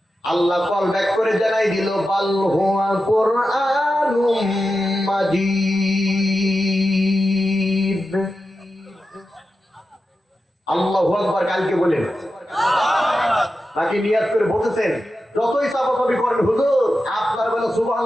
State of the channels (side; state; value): both; normal; correlation 0.91